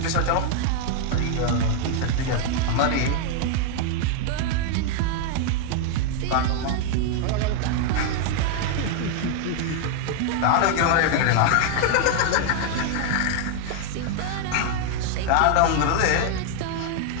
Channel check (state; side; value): different; both; correlation 0.00